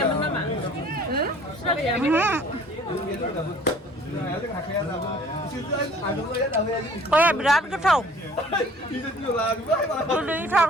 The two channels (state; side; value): normal; both; correlation 0.52